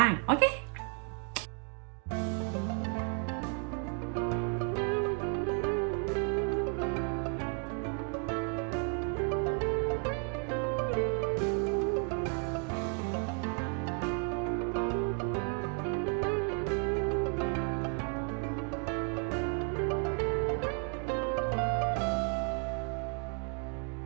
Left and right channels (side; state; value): left; quieter; 37.7 dB